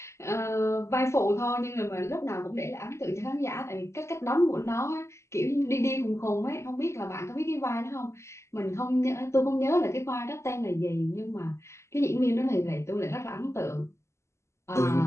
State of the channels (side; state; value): right; late; 0.13 ms